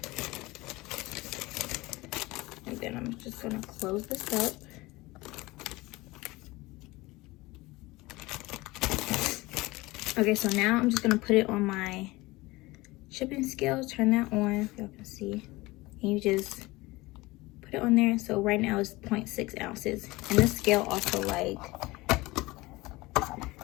And then I'm just gonna close this up. Okay, so now I'm just gonna put it on my shipping scale, turn that on, y'all can see. And you just put it on there. So right now it's 0.6 ounces. And this scale also like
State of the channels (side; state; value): right; quieter; 21.1 dB